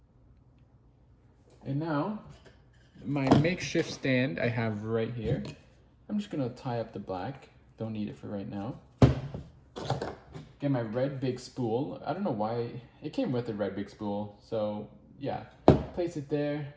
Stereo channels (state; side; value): identical; both; correlation 1.00